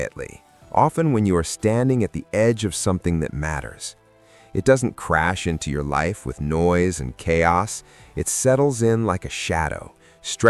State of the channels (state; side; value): identical; both; correlation 1.00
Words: often when you are standing at the edge of something that matters. It doesn't crash into your life with noise and chaos. It settles in like a shadow,